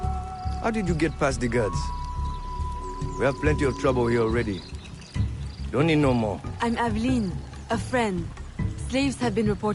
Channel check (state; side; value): identical; both; correlation 1.00